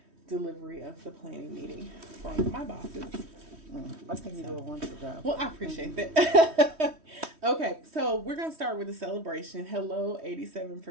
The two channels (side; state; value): left; late; 3.1 ms